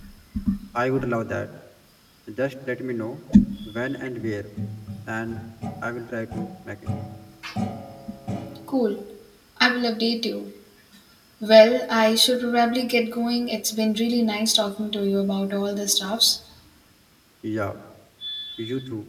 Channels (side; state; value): both; identical; correlation 1.00